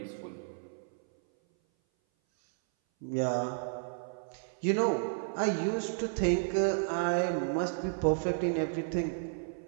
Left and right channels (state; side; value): silent; left; 56 dB below the other